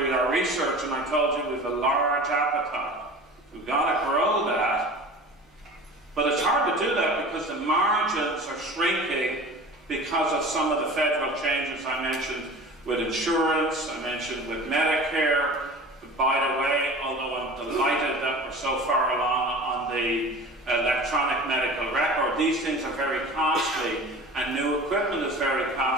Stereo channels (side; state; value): both; normal; correlation 0.38